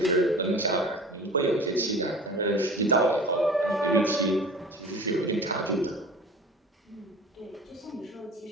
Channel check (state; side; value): normal; both; correlation 0.39